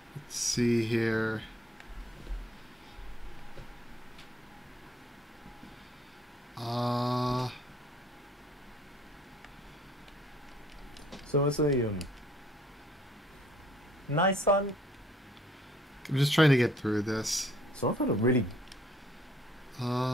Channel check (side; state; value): both; normal; correlation 0.60